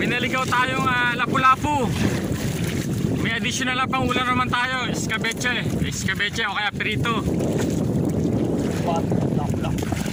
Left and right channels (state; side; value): identical; both; correlation 1.00